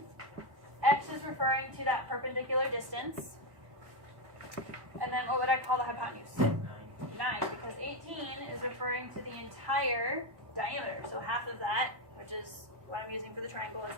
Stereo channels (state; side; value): late; left; 1.1 ms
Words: X is referring to that perpendicular distance. And then what would I call the hypotenuse? 9, because 18 is referring to the entire diameter. So half of that, which is what I'm using for the triangle, is